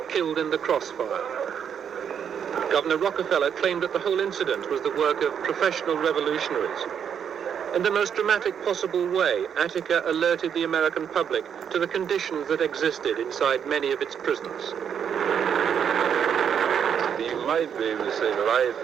killed in the crossfire. Governor Rockefeller claimed that the whole incident was the work of professional revolutionaries. In the most dramatic possible way, Attica alerted the American public to the conditions that existed inside many of its prisons. You might be able to say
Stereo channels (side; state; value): left; quieter; 8.0 dB